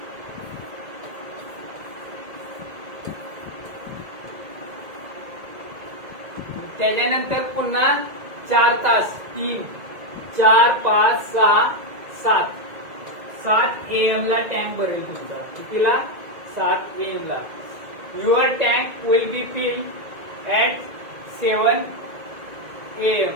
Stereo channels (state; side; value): late; left; 2.0 ms